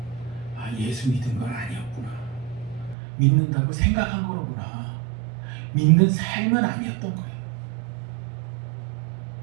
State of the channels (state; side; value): drops out; left; at 3.0 s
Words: 예수 믿은 건 아니었구나. 믿는다고 생각한 거로구나. 믿는 삶은 아니었던 거예요.